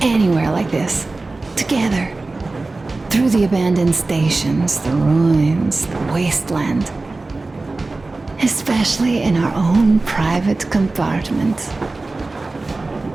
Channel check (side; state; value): left; quieter; 3.3 dB